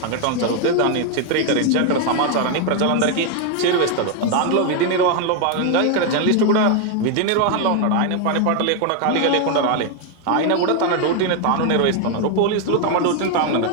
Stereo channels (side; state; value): both; different; correlation 0.01